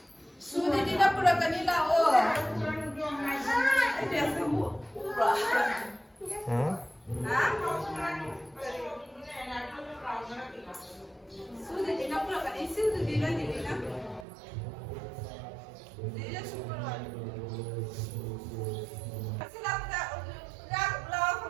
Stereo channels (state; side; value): drops out; left; at 14.2 s